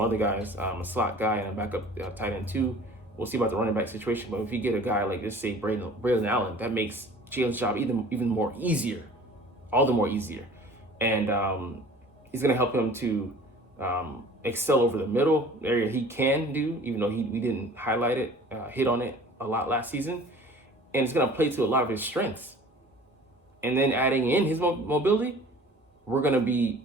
other guys, a slot guy and a backup tight end too. We'll see about the running back situation, but if you get a guy like, let's say, Braylon Allen, that makes Jalen's job even more easier, all the more easier, and he's going to help him to excel over the middle area he can do, even though we didn't highlight it, hit on it a lot last season. And it's going to play to a lot of his strengths. And then adding in his mobility,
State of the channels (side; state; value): both; normal; correlation 0.46